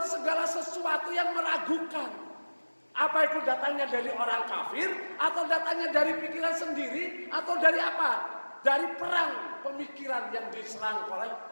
segala sesuatu yang meragukan. Apa itu datangnya dari orang kafir, atau datangnya dari pikiran sendiri, atau dari apa? Dari perang pemikiran yang diserang oleh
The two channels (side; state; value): both; inverted; correlation -1.00